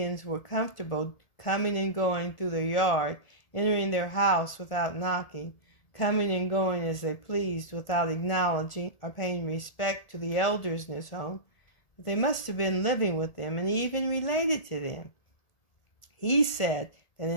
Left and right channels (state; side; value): late; right; 1.7 ms